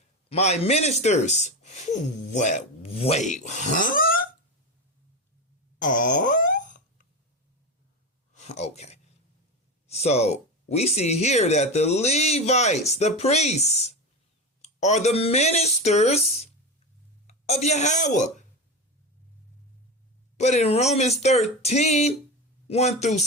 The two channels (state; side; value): normal; both; correlation 0.20